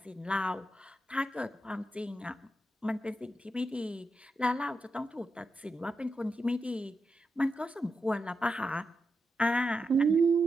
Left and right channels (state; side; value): normal; both; correlation 0.87